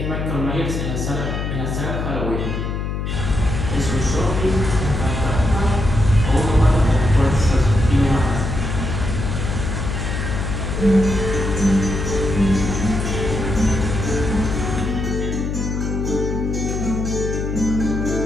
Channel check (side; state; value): left; noise; hum, 2 dB below the sound